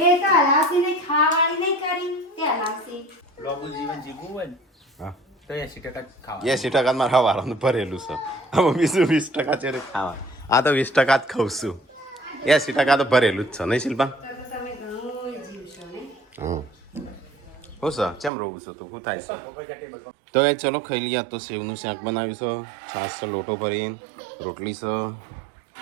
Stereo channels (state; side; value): drops out; left; at 18.3 s